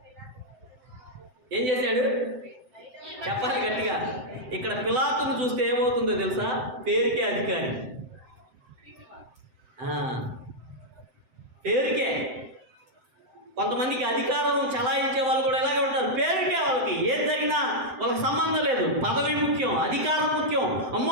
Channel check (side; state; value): left; late; 7.7 ms